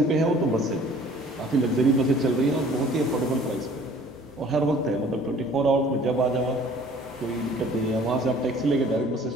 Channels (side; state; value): both; normal; correlation 0.52